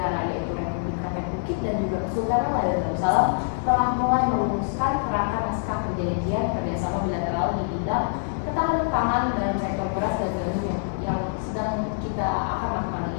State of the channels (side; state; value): right; silent; digital silence